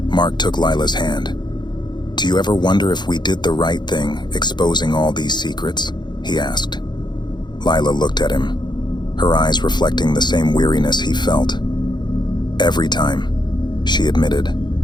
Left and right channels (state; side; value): late; right; 0.21 ms